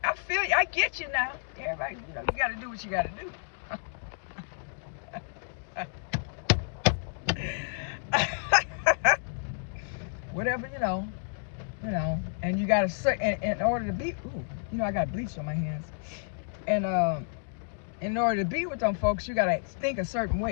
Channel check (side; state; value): right; silent; digital silence